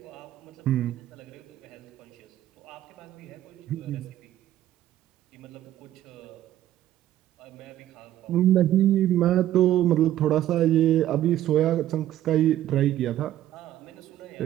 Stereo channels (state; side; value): quieter; left; 12.8 dB